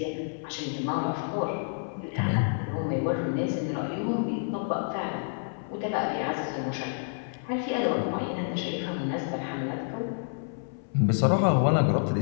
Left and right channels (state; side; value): silent; right; 59 dB below the other